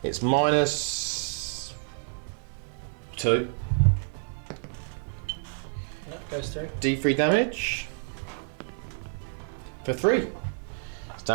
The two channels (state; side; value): silent; left; 59 dB below the other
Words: It's minus 2. That goes through. D3 damage for 3. It's